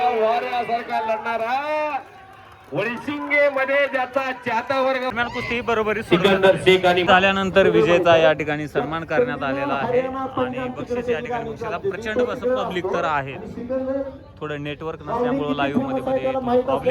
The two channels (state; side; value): identical; both; correlation 1.00